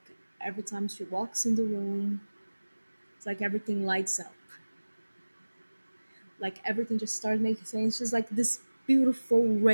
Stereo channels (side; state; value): both; inverted; correlation -1.00